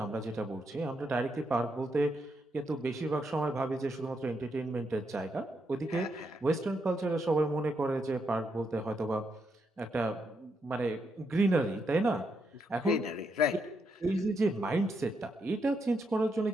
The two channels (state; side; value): normal; both; correlation 0.80